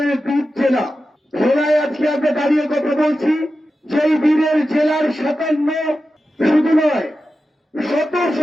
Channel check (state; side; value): normal; both; correlation 0.92